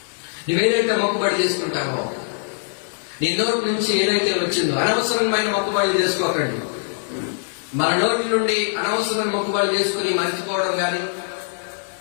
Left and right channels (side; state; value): right; silent; 64 dB below the other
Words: నువ్వేదైతే మొక్కుబడి చేసుకుంటావో, నీ నోటి నుంచి ఏదైతే వచ్చిందో, అనవసరమైన మొక్కుబడి చేసుకోకండి. మన నోటి నుండి అనవసరమైన మొక్కుబడి చేసుకుని మర్చిపోవడం గాని,